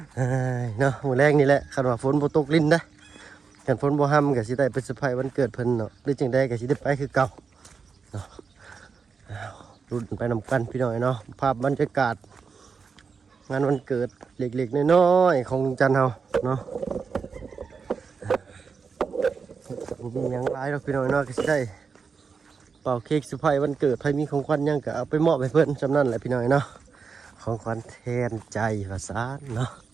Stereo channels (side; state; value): left; quieter; 5.4 dB